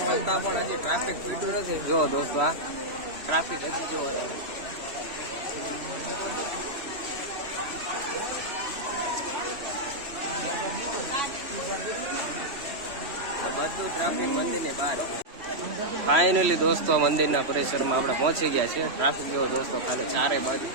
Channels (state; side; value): late; left; 3.1 ms